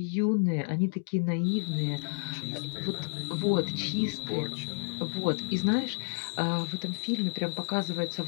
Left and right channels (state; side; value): silent; right; 57 dB below the other